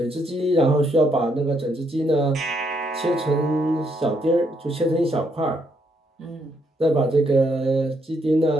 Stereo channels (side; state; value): both; normal; correlation 0.74